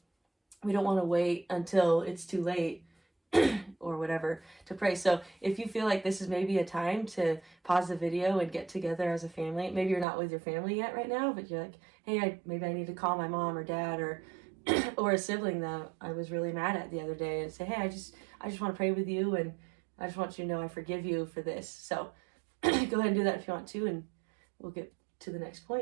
want to wait until it's too late or whatever to pray. So if you feel like this is maybe a time to pause the video and get together as a family, maybe you're not with your family yet right now, but you're like, hey, maybe I need to call my mom or dad or or a sibling that I was really mad at the other day, and say, hey, I just want to pray with you, and I just want you to know I forgive you for this. So go ahead and do that if you want to, and we'll get to the next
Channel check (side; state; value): left; drops out; at 10.1 s